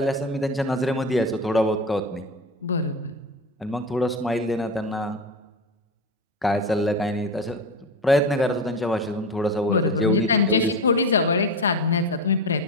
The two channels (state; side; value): normal; both; correlation 0.23